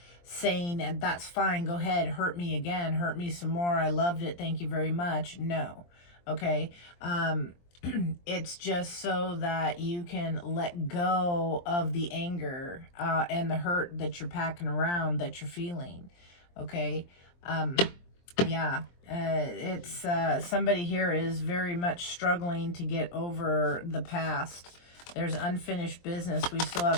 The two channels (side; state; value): right; late; 23 ms